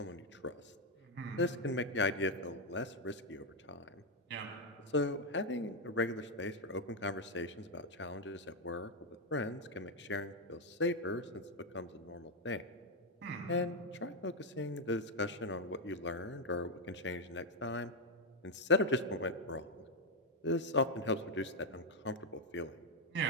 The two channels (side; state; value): both; normal; correlation 0.03